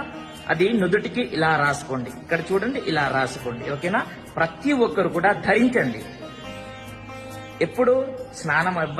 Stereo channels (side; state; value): both; identical; correlation 1.00